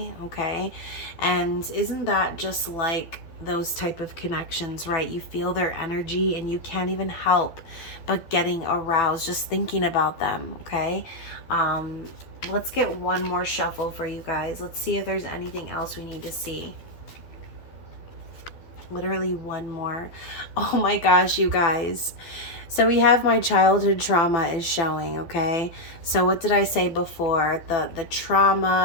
Okay, and isn't that just like those type of connections, right? You feel their energy and you can't even help but getting aroused just thinking about them. Okay, let's get one more shuffle for you guys. Let's see if there's anything else we need to see. Literally one more. Oh my gosh, you guys. So we have my childhood trauma is showing. Okay, so what did I say before? The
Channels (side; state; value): right; late; 12 ms